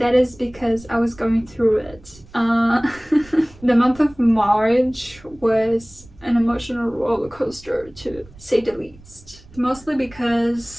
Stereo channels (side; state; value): right; noise; rumble, 23 dB below the sound